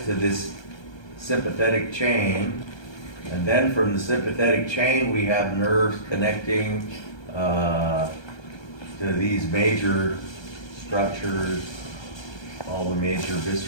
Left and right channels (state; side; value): late; right; 1.3 ms